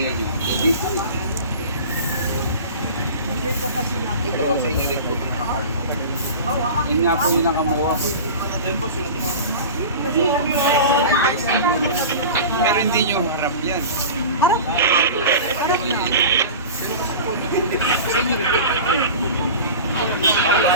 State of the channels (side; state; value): both; inverted; correlation -0.34